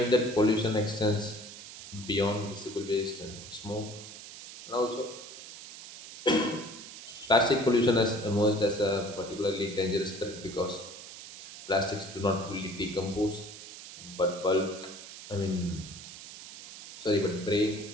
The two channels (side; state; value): right; noise; hiss, 14 dB below the sound